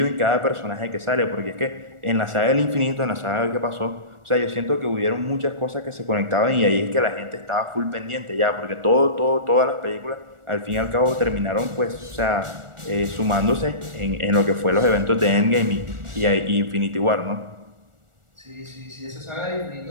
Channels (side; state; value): left; late; 1.4 ms